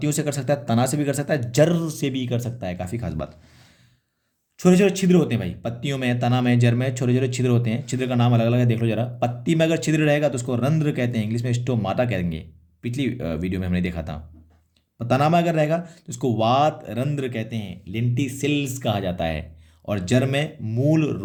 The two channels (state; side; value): identical; both; correlation 1.00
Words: से कर सकता है, तना से भी कर सकता है, जड़ से भी कर सकता है। काफ़ी खास बात। छोटे छोटे छिद्र होते हैं भाई पत्तियों में, तना में, जड़ में छोटे छोटे छिद्र होते हैं। छिद्र का नाम अलग अलग है, देख लो जरा। पत्ती में अगर छिद्र रहेगा तो उसको रंध्र कहते हैं, इंग्लिश में स्टोमाटा कहेंगे। पिछली वीडियो में हमने देखा था। तना में अगर रहेगा तो उसको वात रंध्र कहते हैं, लेंटिसिल्स कहा जाता है। और जड़ में मूल